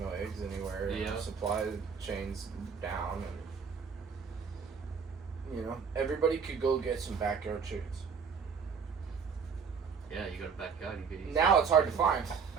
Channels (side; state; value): left; quieter; 6.1 dB